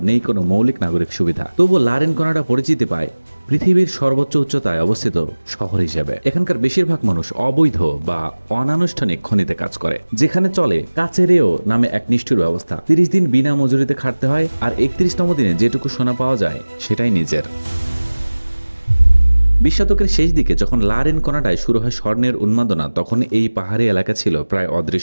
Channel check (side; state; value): both; inverted; correlation -1.00